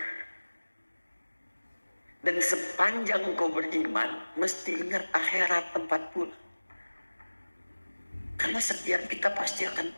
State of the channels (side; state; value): both; inverted; correlation -1.00